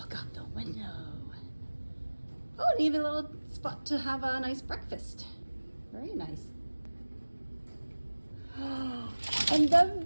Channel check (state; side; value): inverted; both; correlation -1.00